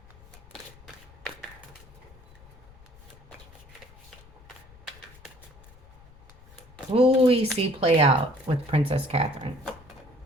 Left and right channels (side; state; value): left; noise; rumble, 23 dB below the sound